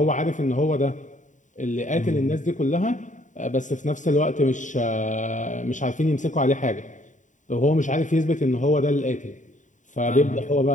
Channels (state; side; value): late; right; 0.36 ms